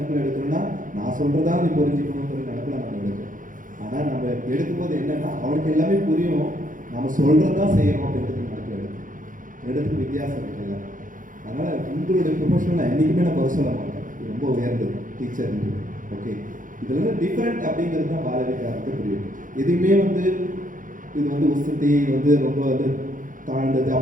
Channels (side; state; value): left; late; 0.39 ms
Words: எடுக்கிறோன்னா நான் சொல்கிறதா நீ புரிஞ்சுக்கணுங்கிற நினைப்பில் நம்ம எடுக்கிறோம். ஆனால் நம்ம எடுக்கும்போது என்னென்னா அவனுக்கு எல்லாமே புரியும், நம்ம சொல்கிறது தான் செய்யணும் அப்படின்றது நினைப்பில் எடுத்துக்கு வித்தியாசம் இருக்குல்ல. அதனால் உங்களுடைய ப்ரொஃபஷனில் என்றைக்குமே நான் குறை சொல்ல மாட்டேன், இது ரொம்ப உயர்ந்தது டீச்சர். ஓகே, இதில் டிஃப்ரெண்ட் அப்படிங்கிறது தான் பாலவிகாரத்தை புரியும். எதுவுமே வந்து இது வந்து உசத்தி வந்து ரொம்ப வந்து தாழ்ந்தது